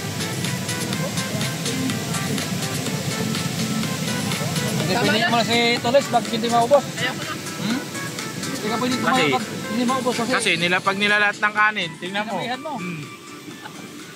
Pinilit mo na si Toles, bakit hindi maubos? Ayoko na. Hindi ka pwede Kasi- tumayo pag hindi maubos kasi. Kasi pag nilalat ng kanin, tingnan mo. Sinabihan mo.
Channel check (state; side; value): identical; both; correlation 1.00